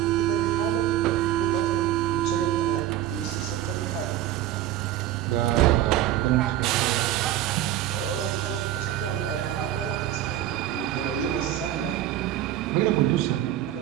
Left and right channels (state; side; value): quieter; left; 12.6 dB